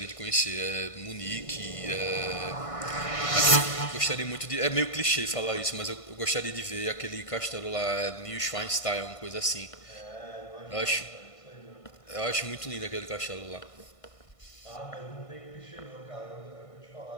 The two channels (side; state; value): right; late; 1.5 ms